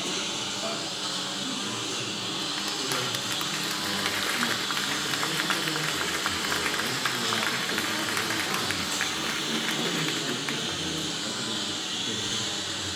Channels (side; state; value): right; noise; rumble, 29 dB below the sound